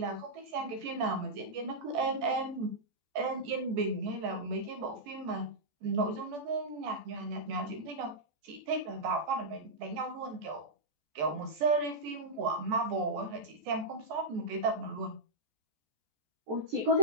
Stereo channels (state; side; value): late; left; 14 ms